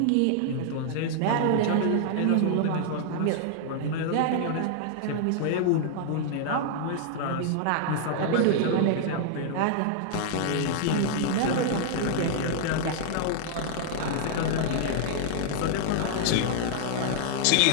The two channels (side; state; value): both; different; correlation -0.01